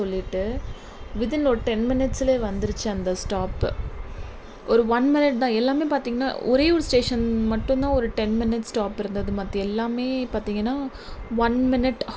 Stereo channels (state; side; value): identical; both; correlation 1.00